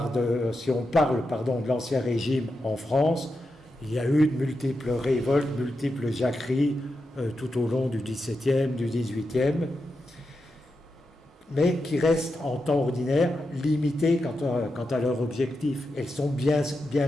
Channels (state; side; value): normal; both; correlation 0.88